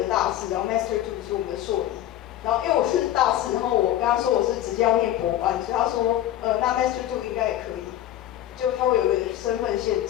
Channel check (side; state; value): right; quieter; 12.7 dB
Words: 大4，然后 Master 2是我们的硕一。然后因为我是大4，然后我跟他说我是直接要念博班，所以他说那 Master 2应该也可以，就他会有个身份限